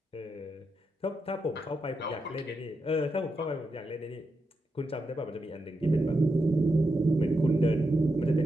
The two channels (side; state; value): both; normal; correlation 0.85